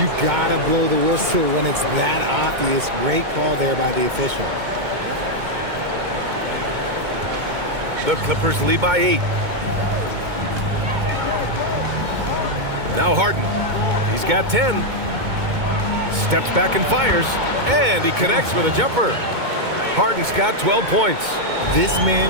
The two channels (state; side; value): late; left; 2.2 ms